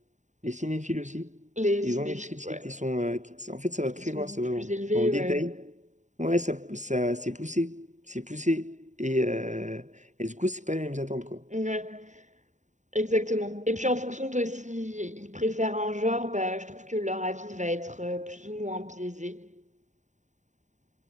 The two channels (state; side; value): late; left; 0.35 ms